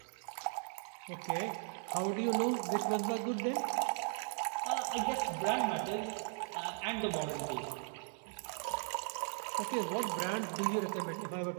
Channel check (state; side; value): silent; left; 53 dB below the other